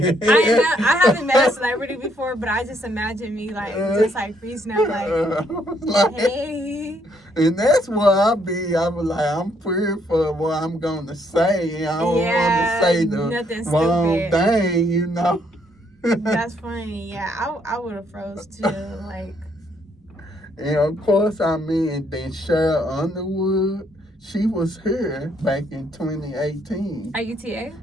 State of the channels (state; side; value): normal; both; correlation 0.71